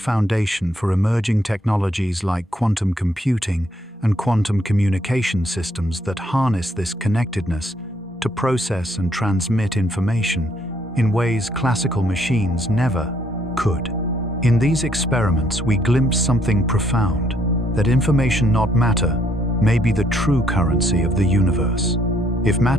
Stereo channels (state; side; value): normal; both; correlation 0.69